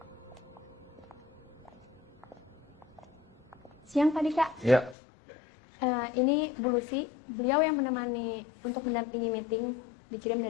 Siang Pak Dika. Iya. Ini Bu Lucy, beliau yang menemani untuk mendampingi meeting, dikirim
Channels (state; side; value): drops out; right; at 5.0 s